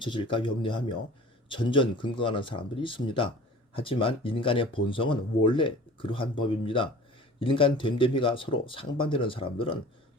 염려하며 전전긍긍하는 사람들이 있습니다. 하지만 인간의 본성은 원래 그러한 법입니다. 인간 됨됨이가 서로 상반되는 사람들은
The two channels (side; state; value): both; normal; correlation 0.43